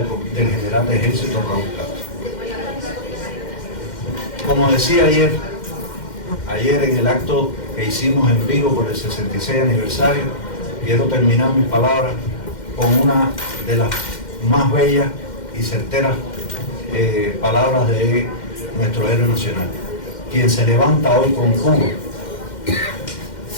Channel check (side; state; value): right; late; 2.1 ms